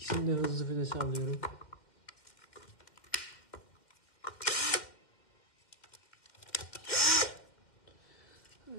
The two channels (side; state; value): right; late; 2.0 ms